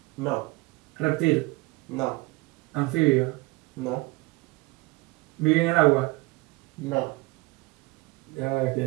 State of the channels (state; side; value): quieter; left; 23.2 dB